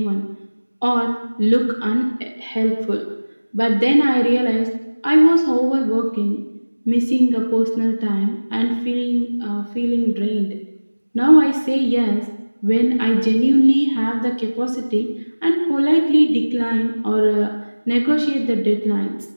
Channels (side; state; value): both; inverted; correlation -1.00